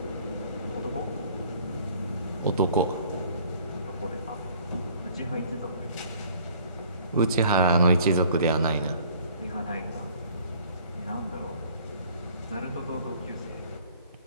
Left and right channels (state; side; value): inverted; both; correlation -0.54